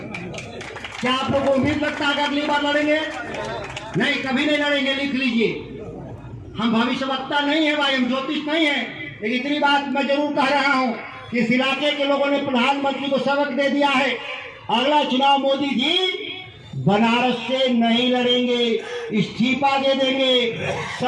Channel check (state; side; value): identical; both; correlation 1.00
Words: क्या आप लोगों को उम्मीद लगता है कि अगली बार लड़ेंगे? नहीं, कभी नहीं लड़ेंगे, लिख लीजिए। हम भविष्यवक्ता नहीं है भाई, हम ज्योतिष नहीं है, लेकिन इतनी बात मैं जरूर कह रहा हूं कि इस इलाके के लोगों ने प्रधानमंत्री को सबक दे दिया है। अगला चुनाव मोदी जी बनारस से नहीं लड़ेंगे, इस्तीफा दे देंगे,